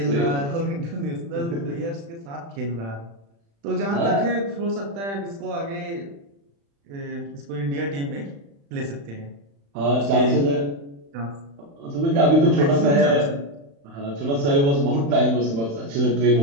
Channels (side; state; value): left; late; 35 ms